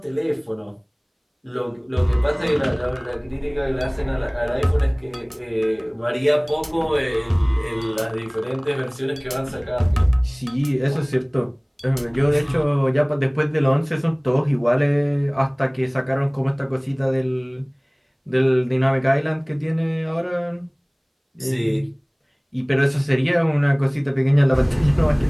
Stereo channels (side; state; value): both; identical; correlation 1.00